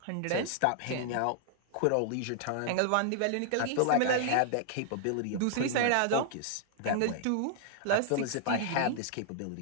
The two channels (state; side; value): different; both; correlation -0.01